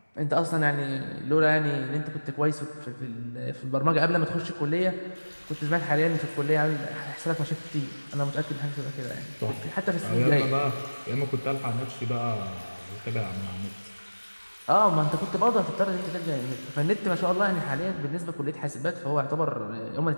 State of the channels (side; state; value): both; inverted; correlation -1.00